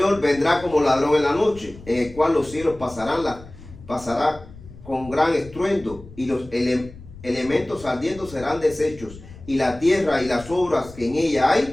vendrá como ladrón en la noche, en el cual los cielos pasará con gran estruendo y los elementos ardiendo serán deshechos, y la tierra y las obras que en ella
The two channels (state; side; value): noise; left; rumble, 18 dB below the sound